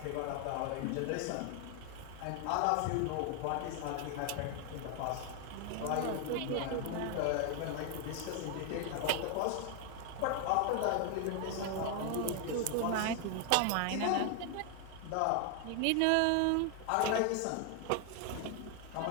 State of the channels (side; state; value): both; different; correlation 0.01